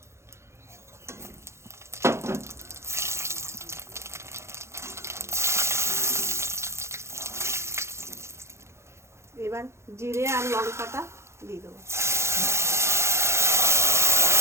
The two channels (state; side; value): late; left; 0.13 ms